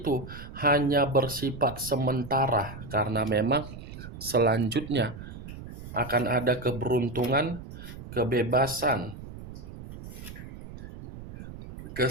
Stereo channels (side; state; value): right; noise; rumble, 13 dB below the sound